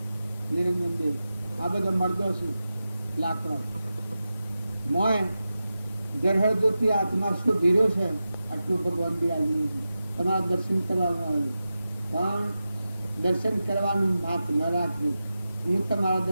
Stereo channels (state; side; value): inverted; both; correlation -0.92